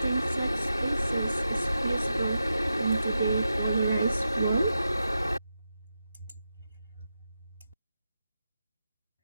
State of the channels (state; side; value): inverted; both; correlation -0.89